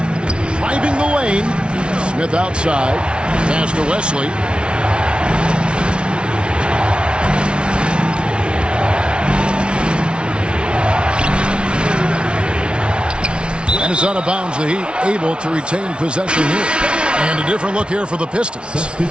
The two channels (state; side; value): late; left; 0.057 ms